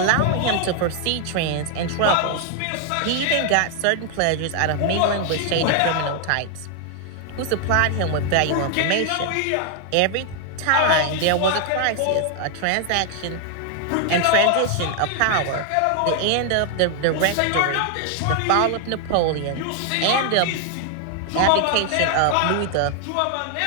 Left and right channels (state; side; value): different; both; correlation 0.00